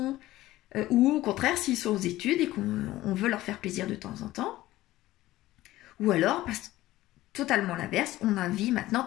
ou au contraire s'ils sont aux études et qu'on veut leur faire plaisir de temps en temps. Ou alors, totalement l'inverse, on a envie maintenant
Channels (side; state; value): right; quieter; 16.2 dB